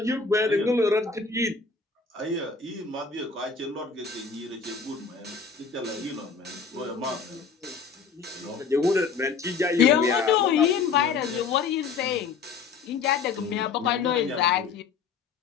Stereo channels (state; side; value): quieter; right; 5.3 dB